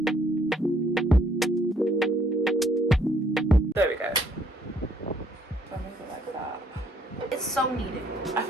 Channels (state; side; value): normal; both; correlation 0.65